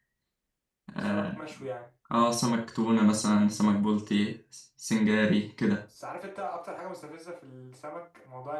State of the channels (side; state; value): both; identical; correlation 1.00